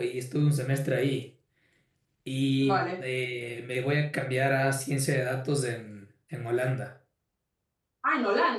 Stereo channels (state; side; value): identical; both; correlation 1.00